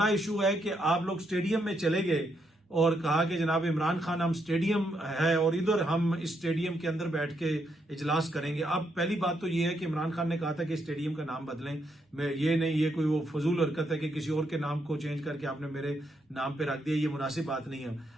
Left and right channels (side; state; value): both; normal; correlation 0.78